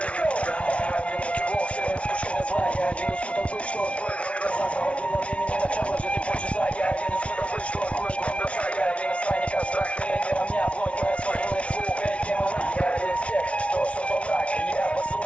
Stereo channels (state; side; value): late; right; 0.062 ms